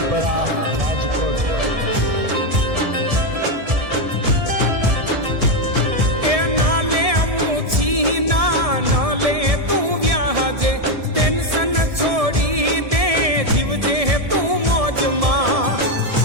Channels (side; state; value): left; late; 1.7 ms